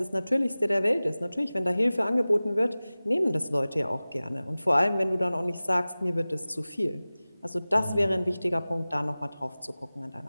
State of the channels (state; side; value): inverted; both; correlation -0.98